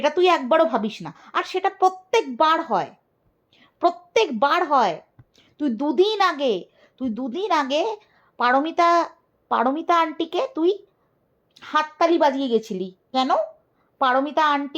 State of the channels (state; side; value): identical; both; correlation 1.00